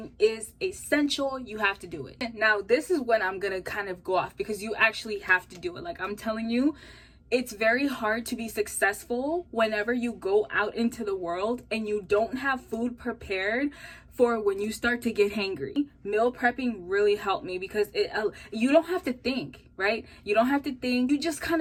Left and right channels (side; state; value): both; identical; correlation 1.00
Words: is essential. You have to do it. Now, this is when I'm gonna kind of go off, because you actually have to do it. Like I'm telling you, it's very hard to be successful whenever you go out into the world and you don't have food prepared for when you start to get hangry. Meal prepping really helped me because you don't have to think, right? You don't have to think. You just